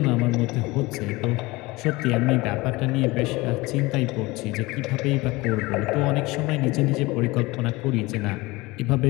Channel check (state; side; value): quieter; right; 21.8 dB